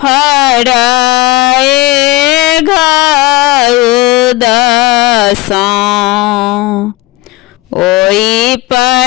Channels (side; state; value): right; quieter; 19.3 dB